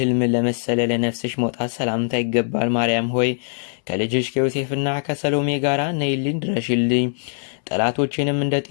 ለመሰለ ለነፍስሽ መውጣት ሰላምታ ይገባል። ማርያም ሆይ ከልጅሽ ከዮሴፍና ከሰሎሜ ጋር ነይልኝ ድረሽልኝ። ጠላቶችንም እንደ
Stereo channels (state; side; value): silent; right; 64 dB below the other